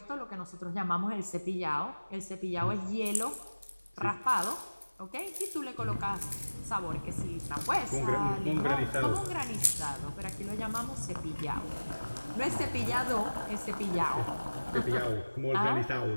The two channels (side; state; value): both; inverted; correlation -1.00